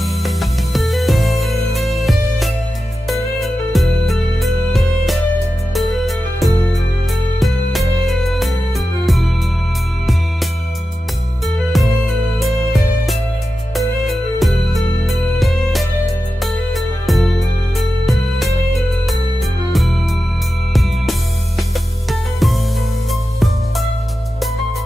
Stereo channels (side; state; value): both; normal; correlation 0.92